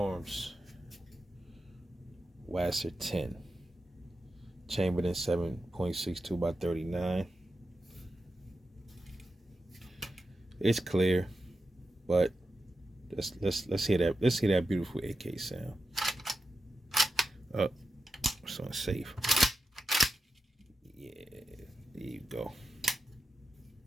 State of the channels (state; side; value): normal; both; correlation 0.90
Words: Wasr 10, chambered in 7.62 by 39. It's clear, but let's hear that. Let's hear that beautiful AK sound. It's unsafe. Yeah, there you go.